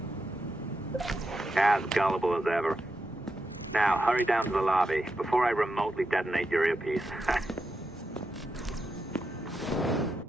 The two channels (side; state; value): both; normal; correlation 0.86